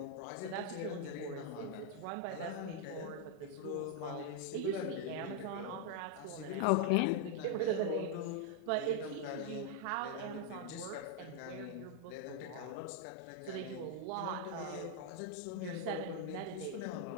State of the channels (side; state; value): both; different; correlation 0.00